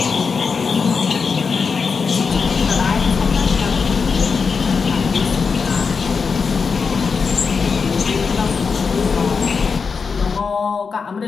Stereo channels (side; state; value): right; quieter; 5.3 dB